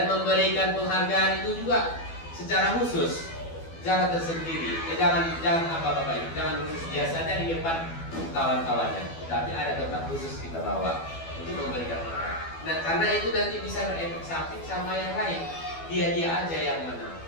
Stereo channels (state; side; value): late; right; 12 ms